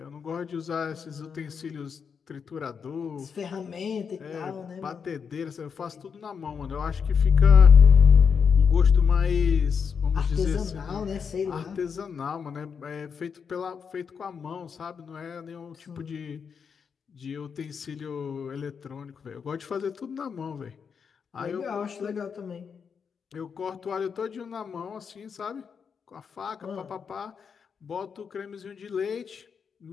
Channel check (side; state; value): right; quieter; 6.4 dB